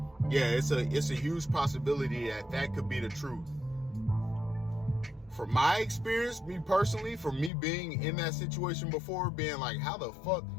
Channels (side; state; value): right; drops out; at 7.5 s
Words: Yeah, it's a huge possibility that could be the truth. From my experience, me personally, from me being in that situation before, being like, how the fuck